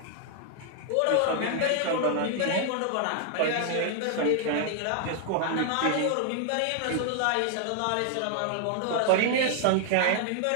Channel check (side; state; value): both; different; correlation 0.00